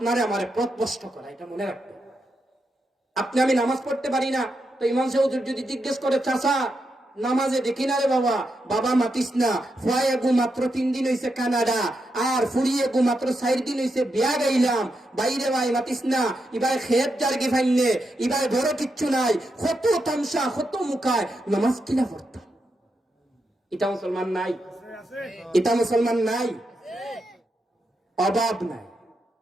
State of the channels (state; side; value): normal; both; correlation 0.85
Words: আমারে পথভ্রষ্ট করা, এটা মনে রাখবেন। আপনি আমি নামাজ পড়তে পারি না, তো ইমাম সাহেব যদি জিজ্ঞেস করে চাচা নামাজে দেখি না রে বাবা, বাবা মাতিস না, ফুয়ায়ে গু মাত্র 3 দিন হইছে কানাডা, আর ফুরিয়ে গু মাত্র 4 দিন হইছে বিয়া গাইলাম, বাইরে ভাই মাতিস না, ইবাই খেত জার্গি ফাইনে, ইবাই বড় কিচ্ছু নাই, কত তামসা কত মুখায় নামাজ কিনা পড়তাম। এটা মুসলমান নাই, এটা মুসলমান নাই, অভাব নাই,